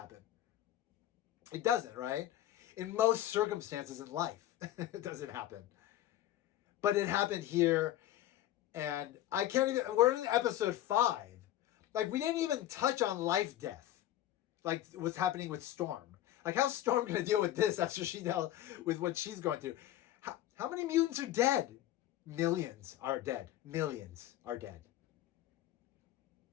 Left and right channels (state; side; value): quieter; right; 13.4 dB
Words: It doesn't, right? In most circumstances in life, it doesn't happen. But it happened here, and I can't even, we're in episode 5. Like we didn't even touch on life death. Like what's happening with Storm. Like how's Storm going to deal with this after she dealt with what she's going through? How many mutants are dead? Millions are dead. Millions are dead.